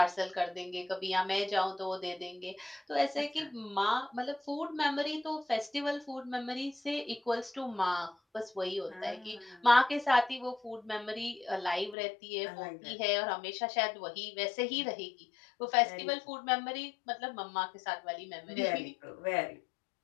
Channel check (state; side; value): drops out; right; at 12.0 s